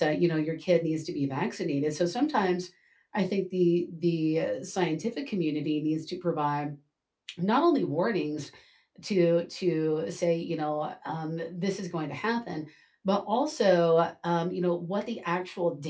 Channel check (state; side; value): identical; both; correlation 1.00